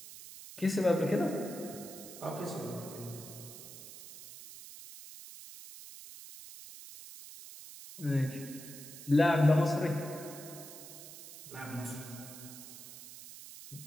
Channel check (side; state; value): right; noise; hiss, 14 dB below the sound